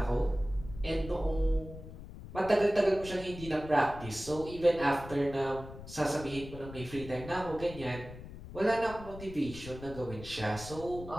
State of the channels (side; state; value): left; noise; rumble, 13 dB below the sound